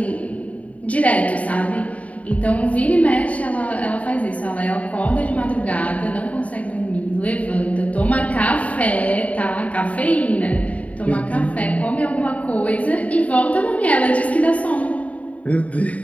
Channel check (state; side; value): late; right; 0.068 ms